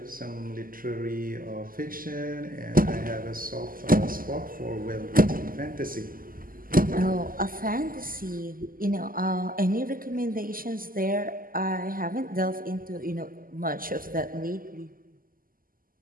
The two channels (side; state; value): left; late; 0.41 ms